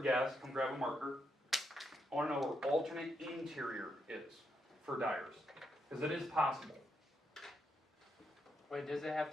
guess, come grab a marker. I want to know where alternate interior is for Dyers. Because it is possible. Wait, does it have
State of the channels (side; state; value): both; normal; correlation 0.80